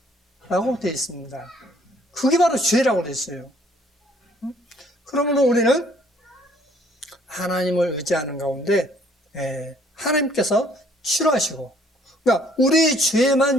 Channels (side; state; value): both; normal; correlation 0.61